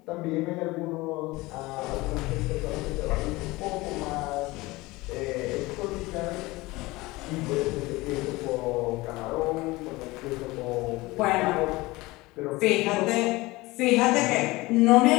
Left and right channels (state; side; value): quieter; right; 21.1 dB